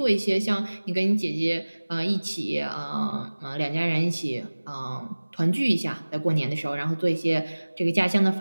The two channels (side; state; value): both; inverted; correlation -1.00